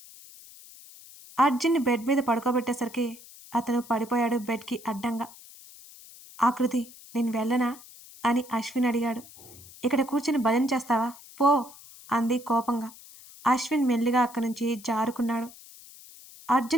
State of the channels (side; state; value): left; noise; hiss, 20 dB below the sound